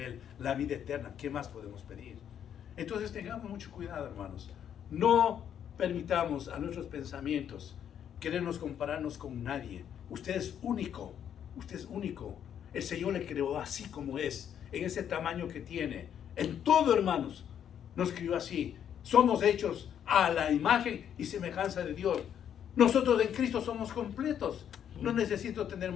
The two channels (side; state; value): right; quieter; 9.2 dB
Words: la vida eterna. ¿Qué más podemos pedir? Entonces tengamos mucho cuidado, hermanos. No permitamos a nuestros pensamientos querernos compararnos con nadie. Usted es único, usted es único. El Señor le creó así como es, en ese tamaño que tiene. En todo, hermanos, nos crió así. Somos hechos a la imagen y semejanza de Dios. Nosotros en Cristo somos completos. No necesito tener